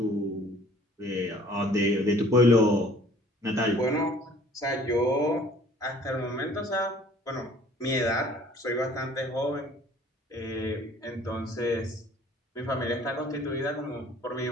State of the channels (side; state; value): both; normal; correlation 0.53